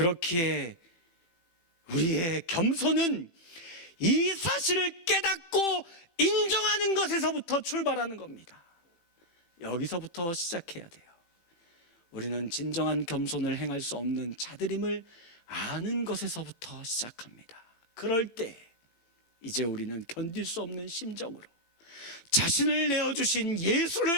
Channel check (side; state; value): right; late; 18 ms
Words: 우리의 겸손은 이 사실을 깨닫고 인정하는 것에서부터 출발하는 겁니다. 여기서부터 시작해야 돼요. 우리는 진정한 겸손을 행할 수 없는 자들임을 아는 것에서부터 시작합니다. 그럴 때 이제 우리는 견딜 수 없는 심정으로 자신을 내어주신